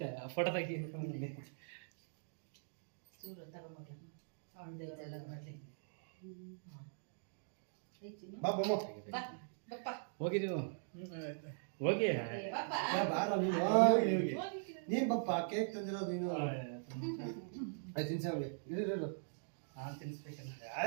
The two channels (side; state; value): left; silent; digital silence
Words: ಫೋಟೋ ತೆಗಿ ಚೂರು ತಗೊಂಡ್ಲ ಅವನ ದೇವರೆಲ್ಲ ಮಾಡ್ಲಿ ಹೋಗಿ ನೀವು ಹೋಗಿ ನೀನ್ ಬಪ್ಪ ಕೇಕ್ ತಂದಿರೋದು ನೀನು ಆಯ್ತು ತಿನ್ಸವ್ಗೆ ಇರು ನಾನು ತಿನ್ನಿಸ್ಬೇಕಂತ